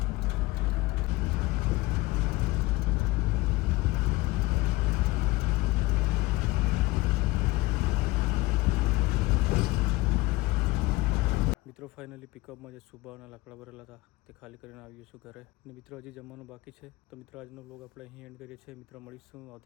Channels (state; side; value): quieter; right; 20.3 dB